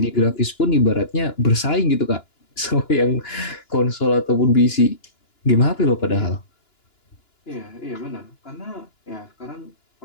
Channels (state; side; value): late; right; 2.9 ms